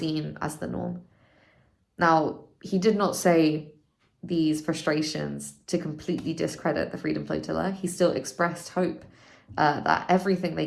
as the norm. Now, he did not say these frustrations to completely discredit the Freedom Flotilla. He still expressed hope that everything they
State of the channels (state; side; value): identical; both; correlation 1.00